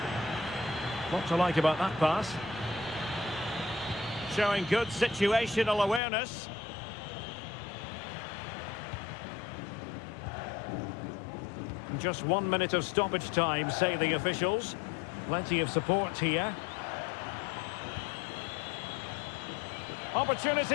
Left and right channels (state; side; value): drops out; right; at 6.0 s